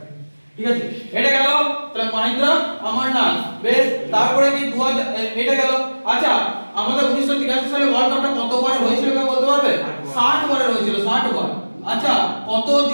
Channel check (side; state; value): both; inverted; correlation -1.00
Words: ঠিক আছে এটা গেল তাহলে মহেন্দ্র অমরনাথ বেশ তারপরে কি 2000 এটা গেল আচ্ছা আমাদের 1983 সালে ওয়ার্ল্ড কাপটা কতবার হয়েছিল কেউ বলতে পারবে 60 বারে হয়েছিল 60 বার আচ্ছা